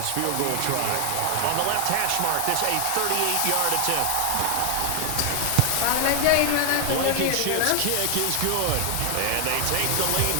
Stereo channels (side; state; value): both; different; correlation 0.00